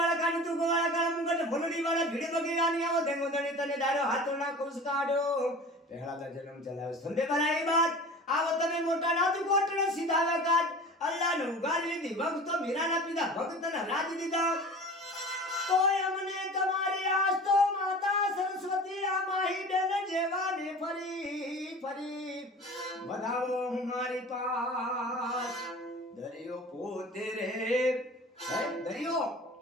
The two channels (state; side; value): normal; both; correlation 0.39